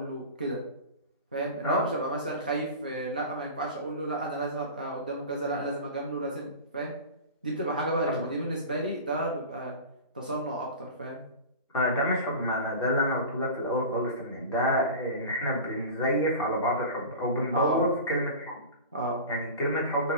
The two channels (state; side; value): inverted; both; correlation -0.32